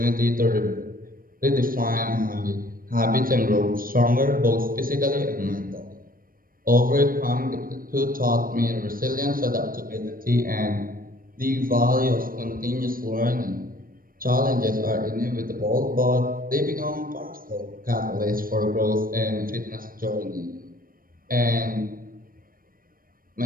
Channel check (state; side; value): late; left; 0.41 ms